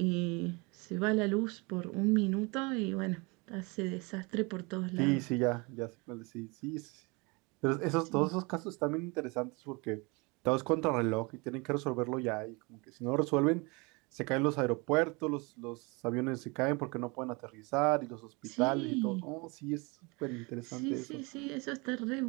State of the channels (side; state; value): left; quieter; 28.2 dB